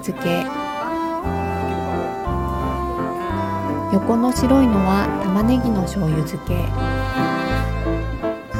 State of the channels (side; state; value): both; identical; correlation 1.00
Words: け、横の白いのは玉ねぎの醤油漬け、